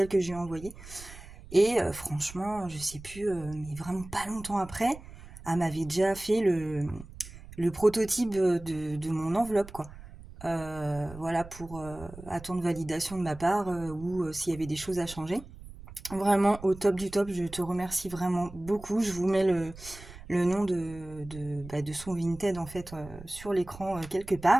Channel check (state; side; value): noise; right; rumble, 16 dB below the sound